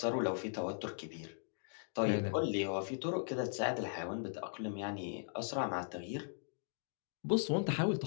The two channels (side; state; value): right; silent; digital silence